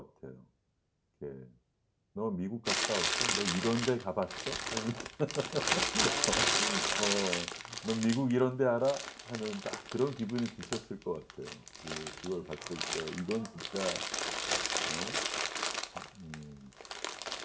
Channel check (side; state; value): both; identical; correlation 1.00